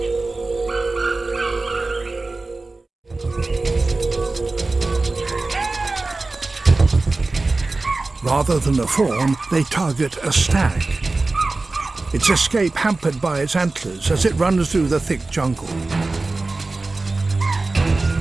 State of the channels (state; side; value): quieter; left; 3.4 dB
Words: Rather than a fawn, they target a stag. Its escape hampered by its antlers as it runs through the thick jungle.